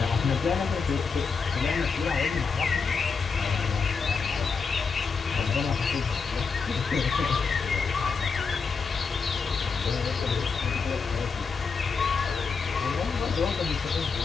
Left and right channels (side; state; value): right; quieter; 5.2 dB